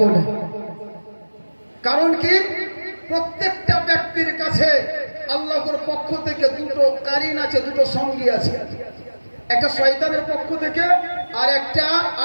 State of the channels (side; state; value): both; inverted; correlation -1.00